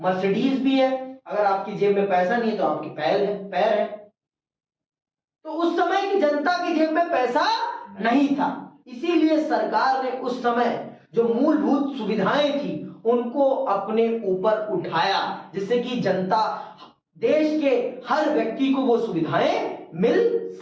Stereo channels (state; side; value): identical; both; correlation 1.00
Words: मर्सिडीज भी है, अगर आपकी जेब में पैसा नहीं है तो आपकी पैर है। तो उस समय की जनता की जेब में पैसा नहीं था, इसीलिए सरकार ने उस समय जो मूलभूत सुविधाएं थी उनको अपने ऊपर उठाया, जिससे कि जनता, देश के हर व्यक्ति को वो सुविधाएं मिल